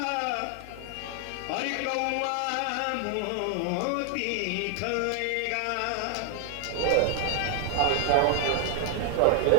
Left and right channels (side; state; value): both; different; correlation 0.00